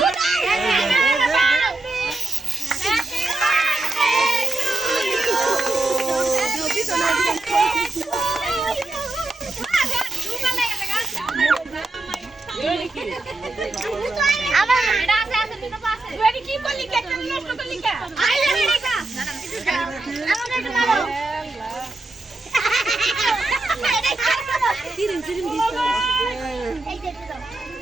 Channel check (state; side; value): quieter; left; 3.0 dB